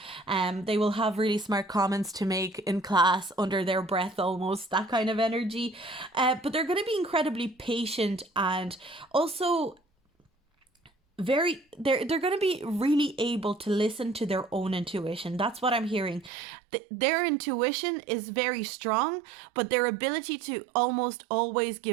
They will have really smart comments to make in class under their breath, almost, that kind of energy. But they're going to be incredibly patient, and also they're going to be really able to listen to their own intuition. That's what I'm hearing. Their intuition is very strong, but their ability to almost always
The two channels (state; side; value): drops out; left; at 16.3 s